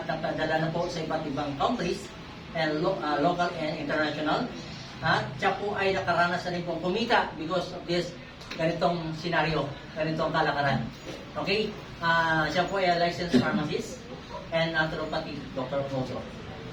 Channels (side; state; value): both; identical; correlation 1.00